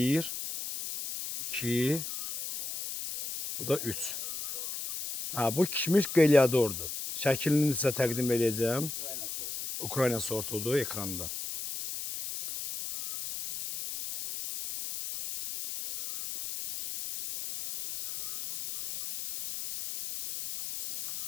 2, bu da 3. Bu kişmiş qelyadordur. Şəklini sizə təqdim edəcəm. Ukrayna sortudur ekranda.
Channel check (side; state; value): left; noise; hiss, 7 dB below the sound